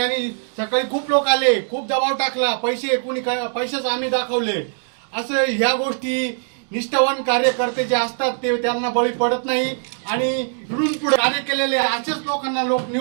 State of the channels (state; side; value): silent; left; digital silence